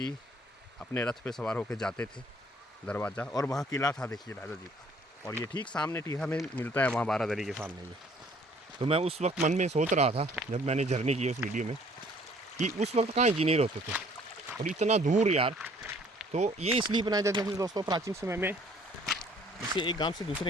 अपने रथ पे सवार होकर जाते थे दरवाज़ा, और वहाँ किला था देखिए राजा जी का। और ये ठीक सामने टीहा में मिलता है, वहाँ बारादरी के सामने। ये तो मैं उस वक्त मन में सोच रहा था जब मैंने जर्नी की उस वीडियो में कि उस वक्त कहाँ इंजीनियर होते थे और इतना दूर यार। तो ये इसलिए बनाए जाते थे दोस्तों, प्राचीन समय में जैसे एक गांव से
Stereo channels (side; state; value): both; normal; correlation 0.58